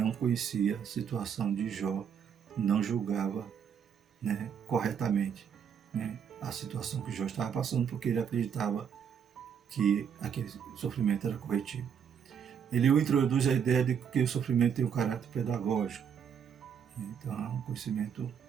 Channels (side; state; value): left; quieter; 7.7 dB